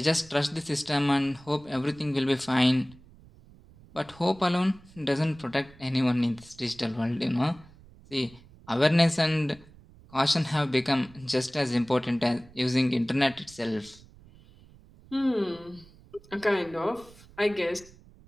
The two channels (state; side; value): noise; right; rumble, 24 dB below the sound